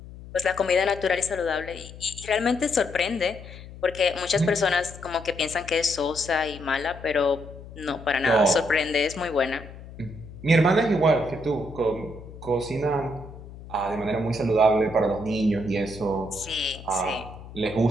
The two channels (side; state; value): left; noise; hum, 15 dB below the sound